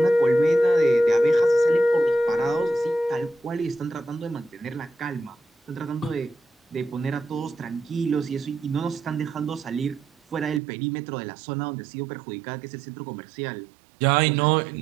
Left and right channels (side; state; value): left; drops out; at 10.6 s